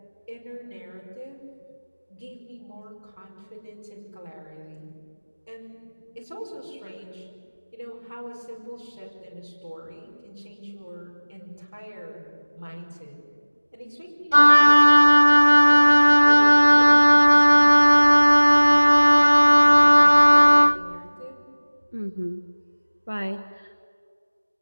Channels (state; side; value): inverted; both; correlation -1.00